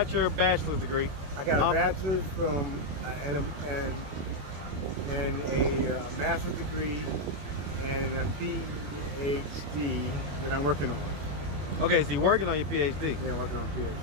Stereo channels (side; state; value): left; late; 21 ms